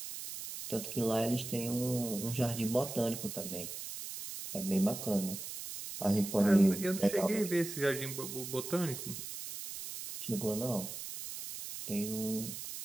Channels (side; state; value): right; noise; hiss, 8 dB below the sound